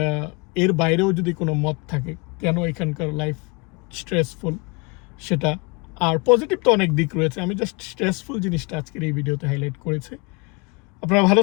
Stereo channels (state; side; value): quieter; right; 29.2 dB